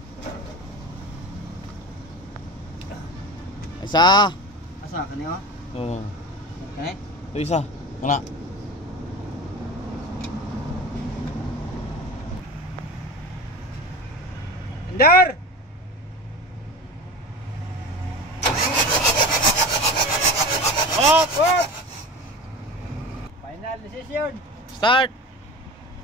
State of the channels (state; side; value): normal; both; correlation 0.31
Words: Isa. Asa kaniyo? Oo. Okay. Ito isa. Mana? Andar! Off! Off! Final decision. Start!